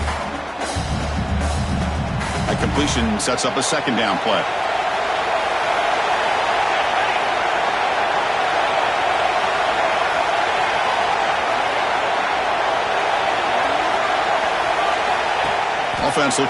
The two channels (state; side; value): identical; both; correlation 1.00